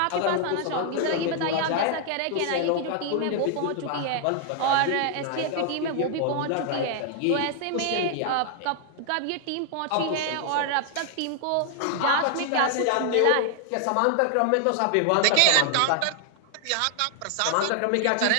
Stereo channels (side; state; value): both; different; correlation 0.00